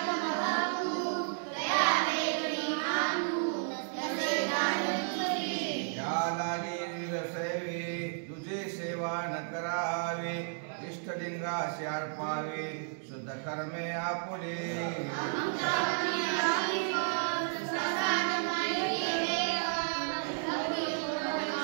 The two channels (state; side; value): silent; left; digital silence